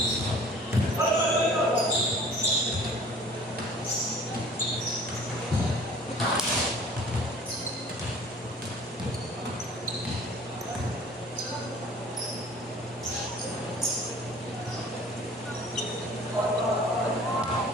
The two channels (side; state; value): both; normal; correlation 0.48